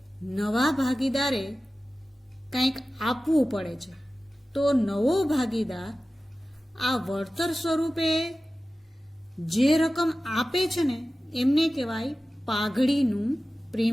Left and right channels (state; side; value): normal; both; correlation 0.95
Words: નવા ભાગીદારે કંઈક આપવું પડે છે. તો નવો ભાગીદાર આ વળતર સ્વરૂપે જે રકમ આપે છે ને એમને કહેવાય પાઘડીનું